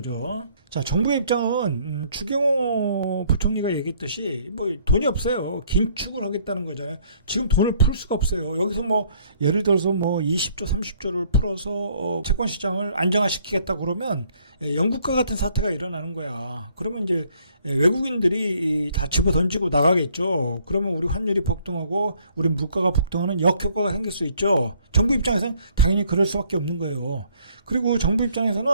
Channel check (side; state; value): both; inverted; correlation -0.63